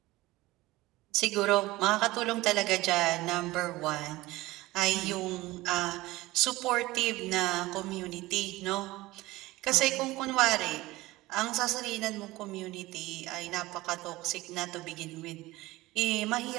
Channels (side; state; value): left; quieter; 19.0 dB